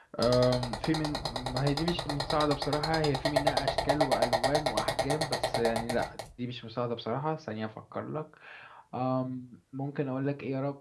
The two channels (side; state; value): both; identical; correlation 1.00